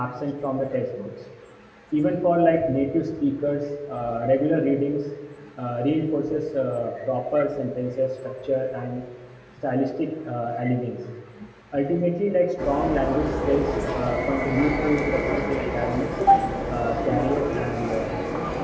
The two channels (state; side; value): identical; both; correlation 1.00